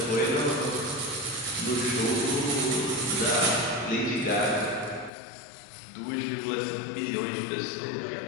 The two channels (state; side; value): drops out; right; at 5.1 s